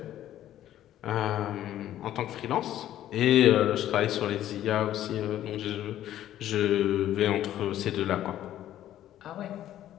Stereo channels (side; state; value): right; quieter; 12.4 dB